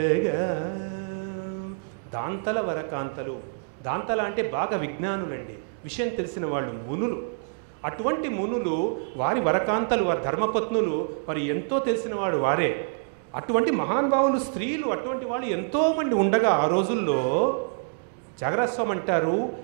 దాంతల వరకాంతలు, దాంతల అంటే బాగా విజ్ఞానులండి, విషయం తెలిసిన వాళ్ళు, మునులు. అటువంటి మునులు వారి వరకాంతలు, వారి ధర్మపత్నులు మరి ఎంతో తెలిసిన వాడు వారే. అటువంటి మహానుభావులు స్త్రీలు అటువంటి వాళ్ళు ఎంతోమంది ఉండగా ఆ రోజుల్లో జాగరస్వామి అంటారు,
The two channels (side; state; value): left; silent; digital silence